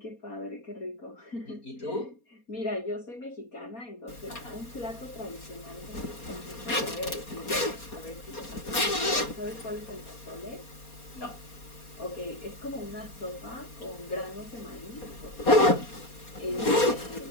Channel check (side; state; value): right; late; 4.2 ms